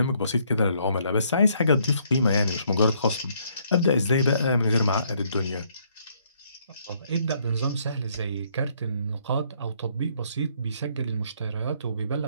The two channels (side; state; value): both; inverted; correlation -0.68